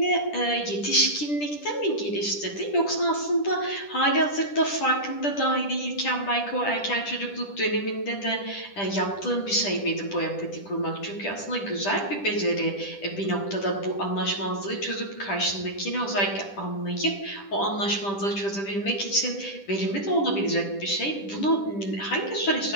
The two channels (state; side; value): late; right; 10 ms